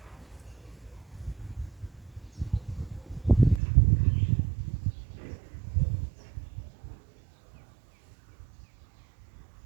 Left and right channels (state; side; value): drops out; left; at 3.6 s